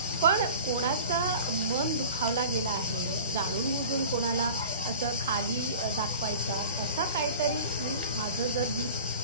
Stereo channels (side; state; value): both; inverted; correlation -0.41